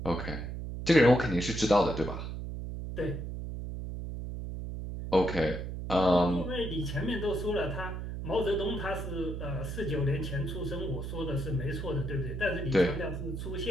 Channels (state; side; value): noise; right; hum, 6 dB below the sound